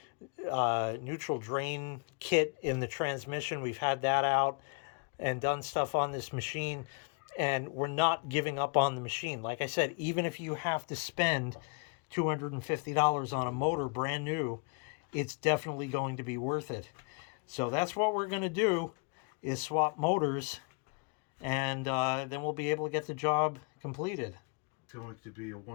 drain kit in the transmission. We've had that out and done stuff on this machine, and we're not giving up on the machine. Like I said, even if you have to spend $250 on a motor brand new, it's definitely going to be worth it. So that's what we're going to do, is swap motors, and then we'll be able to get the job completed. It's going to be a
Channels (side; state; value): right; quieter; 34.6 dB